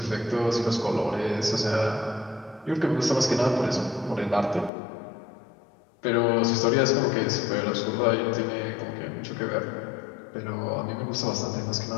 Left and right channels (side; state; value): right; drops out; at 4.7 s